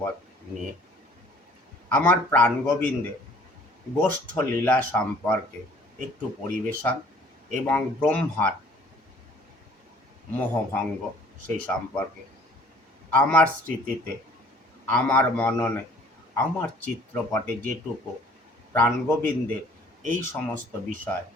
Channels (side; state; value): both; normal; correlation 0.54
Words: নিয়ে। আমার প্রাণগোবিন্দে গোষ্ঠ লীলা সম্পর্কে একটু পরিবেশন এবং ব্রহ্মার মোহভঙ্গ সেই সম্পর্কে আমার স্মৃতিতে, আমার মননে, আমার চিত্রপটে যেটুকু প্রাণগোবিন্দের এই সমস্ত বিষয়